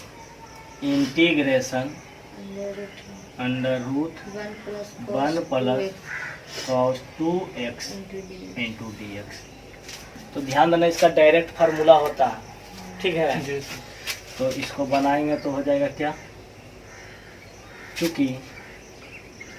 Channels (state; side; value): identical; both; correlation 1.00